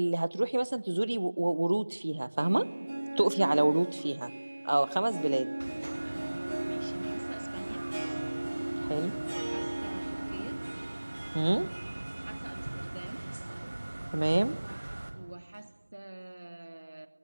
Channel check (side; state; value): both; inverted; correlation -1.00